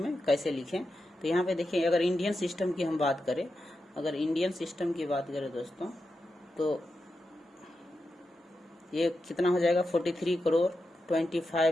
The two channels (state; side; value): normal; both; correlation 0.89